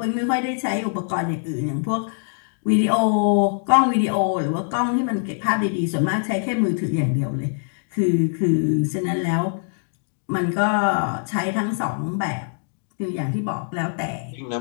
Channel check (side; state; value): right; silent; digital silence